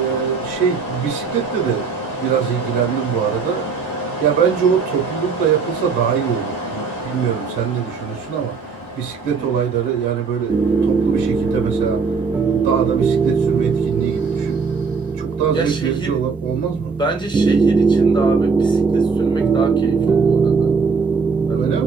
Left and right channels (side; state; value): left; quieter; 5.2 dB